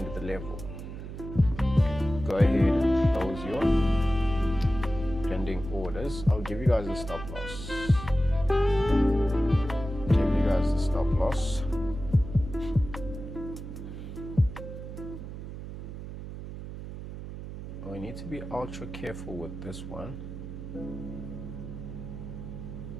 the level. Go ahead and close your pending orders. I'll give you guys a stop loss. Give you guys a stop loss. We need to be ultra careful with this one.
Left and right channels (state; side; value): noise; right; hum, 10 dB below the sound